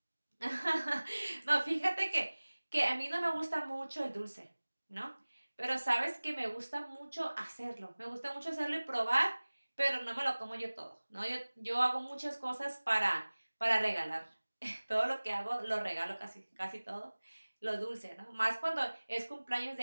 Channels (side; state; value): both; inverted; correlation -1.00